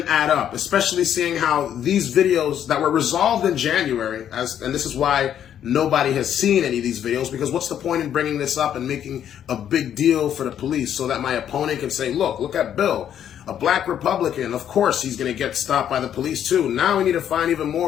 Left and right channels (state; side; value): quieter; right; 9.8 dB